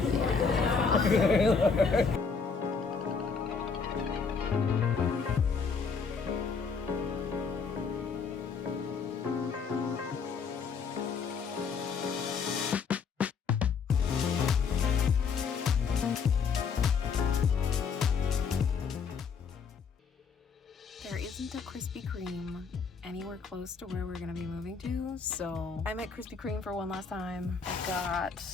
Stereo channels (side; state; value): right; quieter; 5.6 dB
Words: Yeah. There isn't a Krispy Kreme anywhere close to where we're gonna be moving to, so I'm at Krispy Kreme for one last time. I